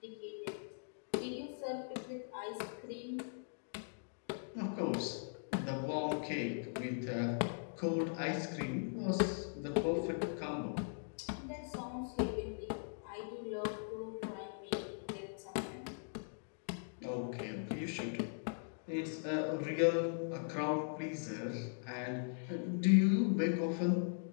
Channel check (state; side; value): silent; right; digital silence